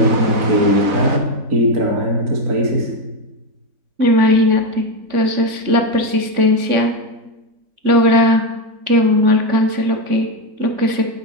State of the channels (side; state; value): left; late; 3.6 ms